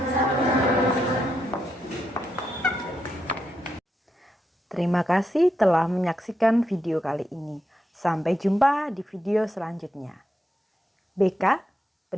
Terima kasih telah menyaksikan video kali ini. Sampai jumpa di video selanjutnya. BK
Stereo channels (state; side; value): normal; both; correlation 0.83